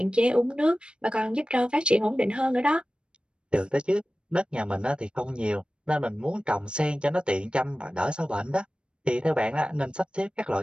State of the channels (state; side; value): late; left; 0.055 ms